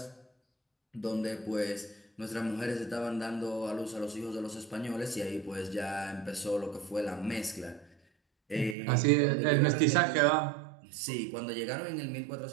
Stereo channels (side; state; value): left; drops out; at 8.8 s